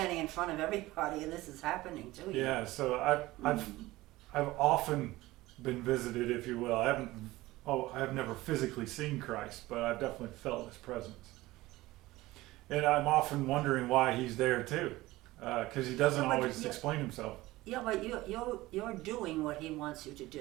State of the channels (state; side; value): quieter; left; 18.5 dB